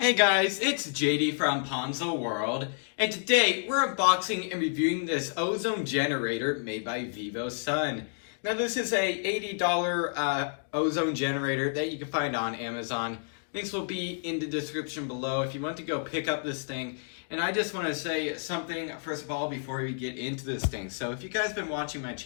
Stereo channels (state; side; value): silent; right; digital silence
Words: Hey guys, it's JD from Ponzo World, and today we're unboxing and reviewing this ozone generator made by Vivosun. Now this is a $80 ozone generator that you can find on Amazon. Links will be in the description below if you want to go pick up this thing. And I just want to say something first of all before we get into this thing. So if you guys have been watching my